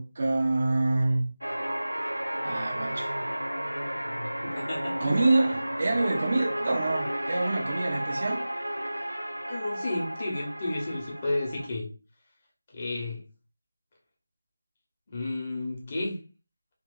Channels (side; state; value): both; inverted; correlation -0.96